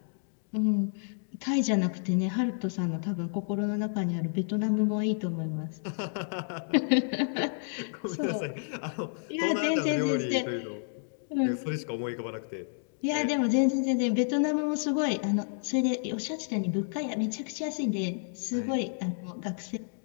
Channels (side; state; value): right; silent; digital silence